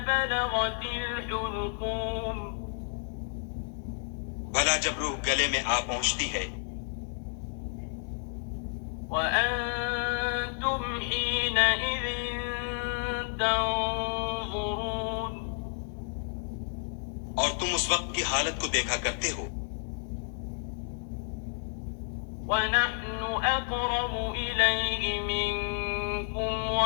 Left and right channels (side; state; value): right; silent; 57 dB below the other